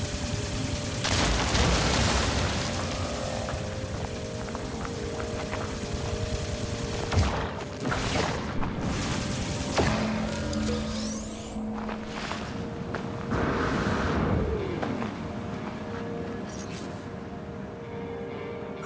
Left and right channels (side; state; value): both; identical; correlation 1.00